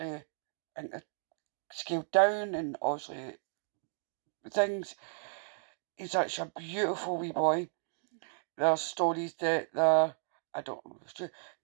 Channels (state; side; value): silent; left; digital silence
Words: scaled down, and obviously things. He's such a beautiful wee boy. There's stories that I don't know if it's true.